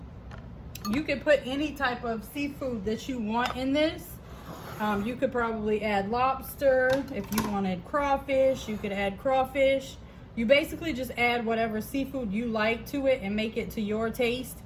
you could put any type of seafood that you want in this. You could probably add lobster. If you wanted crawfish, you could add crawfish. You basically just add whatever seafood you like to it and make it to your taste,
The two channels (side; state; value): both; identical; correlation 1.00